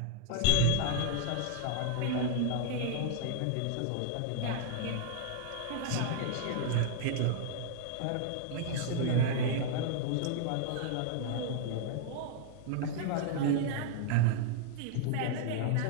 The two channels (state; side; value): different; both; correlation -0.01